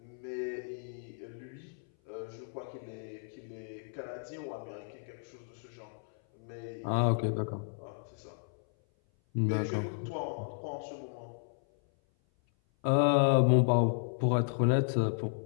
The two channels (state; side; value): silent; right; 55 dB below the other